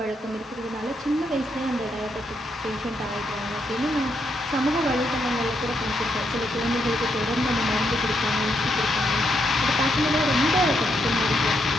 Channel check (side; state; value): both; normal; correlation 0.78